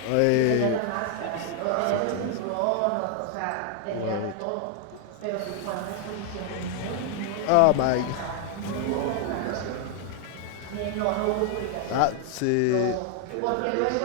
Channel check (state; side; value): different; both; correlation 0.00